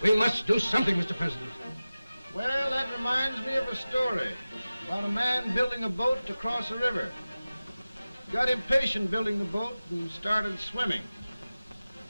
We must do something, Mr. President. Well, that reminds me of a story about a man building a boat to cross a river. He got impatient building the boat and started swimming.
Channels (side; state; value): both; inverted; correlation -0.97